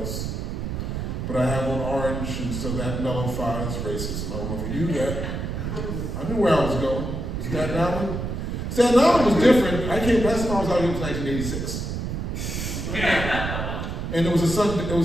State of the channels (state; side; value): noise; right; rumble, 4 dB below the sound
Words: But I have on orange, and so that nullifies racism. I don't know if you knew that. I knew where I was going. Staten Island? Staten Island was different. Last time I was out here was 1986. And it was a